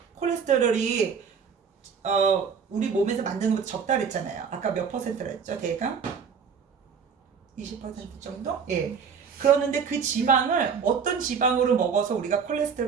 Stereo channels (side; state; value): left; quieter; 6.4 dB